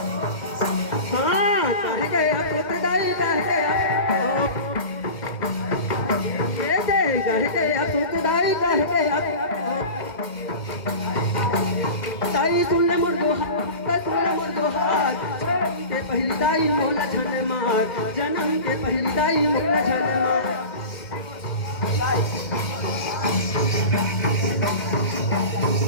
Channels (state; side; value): late; right; 2.1 ms